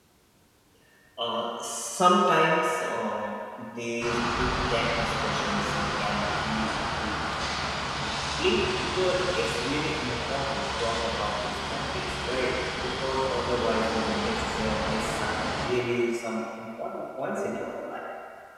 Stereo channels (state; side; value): identical; both; correlation 1.00